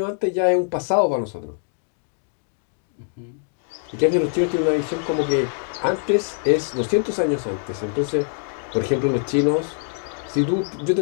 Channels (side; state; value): right; silent; 61 dB below the other